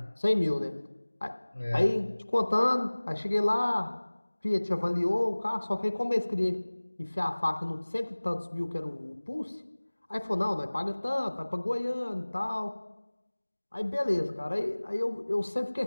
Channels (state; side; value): inverted; both; correlation -1.00